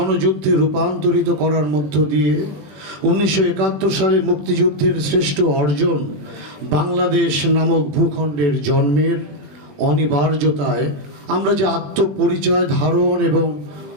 রূপান্তরিত করার মধ্য দিয়ে 1971 সালে মুক্তিযুদ্ধের শ্রেষ্ঠ অর্জন বাংলাদেশ নামক ভূখণ্ডের জন্মের অনিবার্যতায় আমরা যে আত্মপরিচয় ধারণ এবং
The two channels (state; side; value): late; left; 21 ms